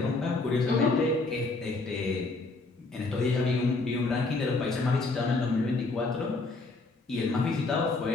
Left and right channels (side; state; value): right; quieter; 3.5 dB